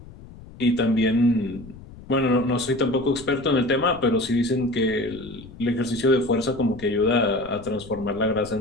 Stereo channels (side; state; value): left; noise; rumble, 18 dB below the sound